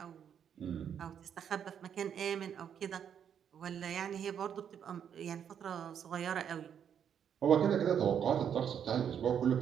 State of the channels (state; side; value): quieter; left; 8.5 dB